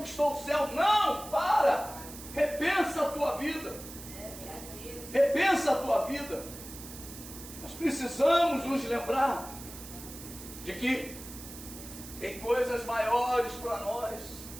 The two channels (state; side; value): noise; right; hiss, 14 dB below the sound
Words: o céu. Não, para. Repensa a tua vida. Repensa a tua vida. Nós precisamos nos lembrar de que tem coisas maiores para nós.